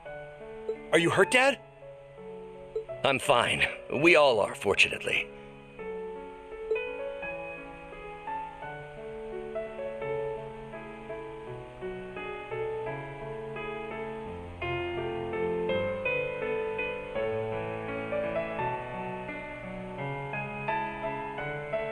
Are you hurt, Dad? I'm fine. We all are, fortunately.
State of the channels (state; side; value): identical; both; correlation 1.00